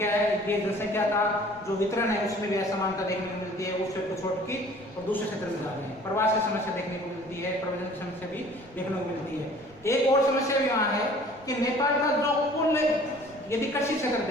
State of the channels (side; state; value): right; noise; rumble, 26 dB below the sound